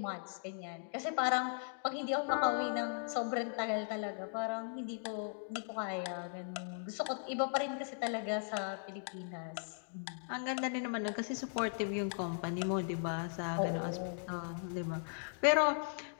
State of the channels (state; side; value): silent; right; digital silence